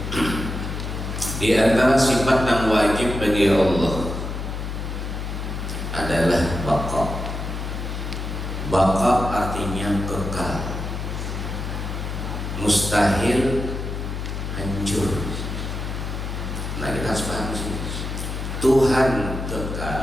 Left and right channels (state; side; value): noise; left; hum, 5 dB below the sound